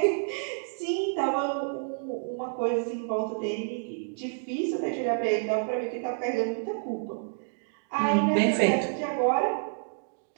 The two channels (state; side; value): silent; left; digital silence